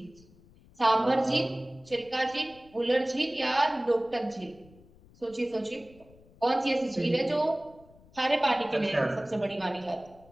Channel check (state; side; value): noise; left; rumble, 26 dB below the sound